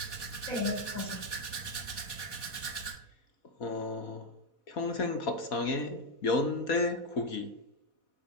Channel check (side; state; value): right; late; 4.1 ms